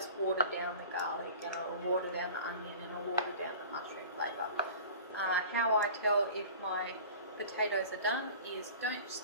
water down the garlic, and it'll water down the onion, and it'll water down the mushroom flavour. How I tell if my potatoes are done is don't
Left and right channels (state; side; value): inverted; both; correlation -0.41